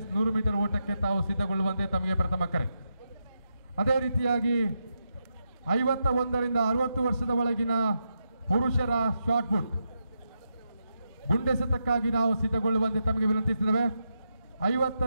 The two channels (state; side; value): inverted; both; correlation -0.85